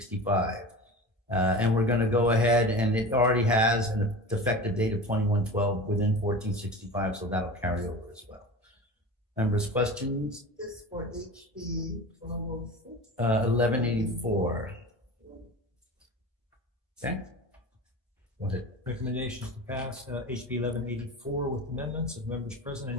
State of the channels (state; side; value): normal; both; correlation 0.33